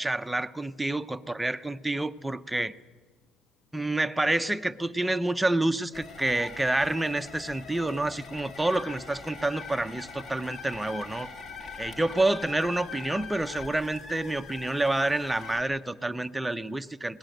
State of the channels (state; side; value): normal; both; correlation 0.95